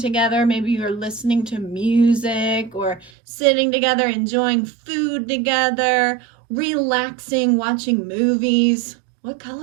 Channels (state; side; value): drops out; left; at 3.1 s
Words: maybe you're listening to music or sitting together, enjoying food together, relaxing, watching movies. What